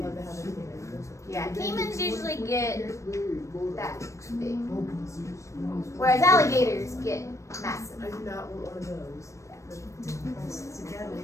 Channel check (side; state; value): right; late; 0.15 ms